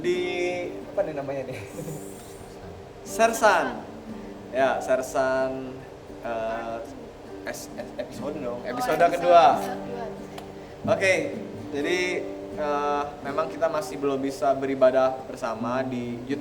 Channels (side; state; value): both; identical; correlation 1.00